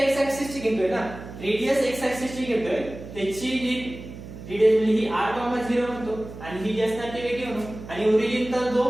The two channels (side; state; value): right; noise; hum, 13 dB below the sound